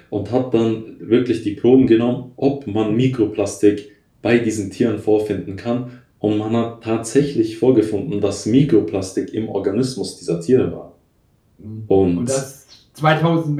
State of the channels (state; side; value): identical; both; correlation 1.00